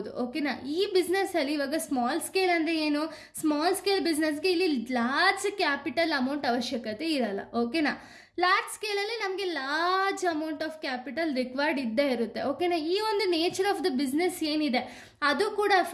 ಓಕೆನಾ. ಈ ಬಿಸ್ನೆಸ್ಸಲ್ಲಿ ಇವಾಗ ಸ್ಮಾಲ್ ಸ್ಕೇಲ್ ಅಂದರೆ ಏನು? ಸ್ಮಾಲ್ ಸ್ಕೇಲ್ ಬಿಸ್ನೆಸ್ಗೆ ಇಲ್ಲಿ ಲಾರ್ಜ್ ಕ್ಯಾಪಿಟಲ್ ಅಮೌಂಟ್ ಅವಶ್ಯಕತೆ ಇರಲ್ಲ, ಓಕೆನಾ. ಲಾರ್ಜ್ ಸ್ಕೇಲಲ್ಲಿ ನಮಗೆ large amount of capital required ಇದ್ದೇ ಇರುತ್ತೆ, ಓಕೆನಾ. ಈ ಒಂದು ನೇಚರ್ ಆಫ್ ದ ಬಿಸ್ನೆಸ್ ಏನಿದೆ ಅದು ಕೂಡ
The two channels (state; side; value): identical; both; correlation 1.00